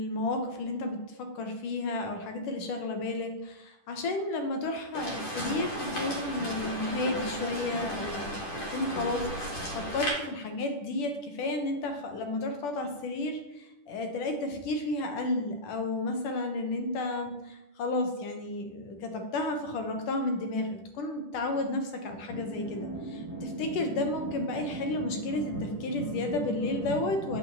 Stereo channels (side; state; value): right; late; 10 ms